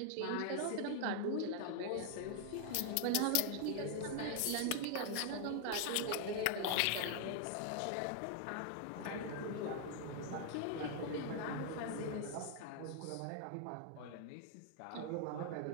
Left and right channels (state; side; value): different; both; correlation 0.00